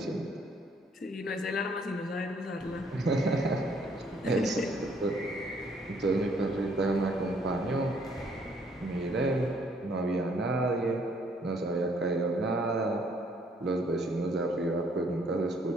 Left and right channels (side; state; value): both; normal; correlation 0.65